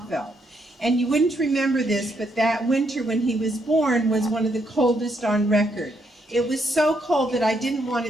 And you wouldn't remember this, but that winter when he was born was one of the coldest on record. It was so cold that I didn't want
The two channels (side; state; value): both; normal; correlation 0.76